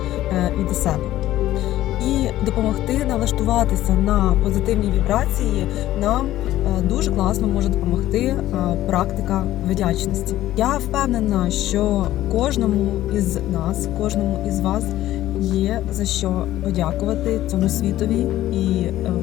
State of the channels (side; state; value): right; quieter; 14.2 dB